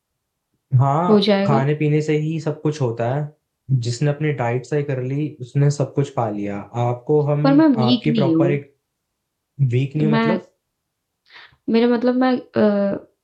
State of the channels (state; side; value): identical; both; correlation 1.00